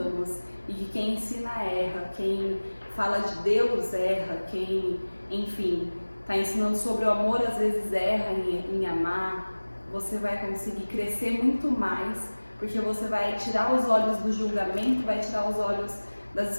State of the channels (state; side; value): inverted; both; correlation -1.00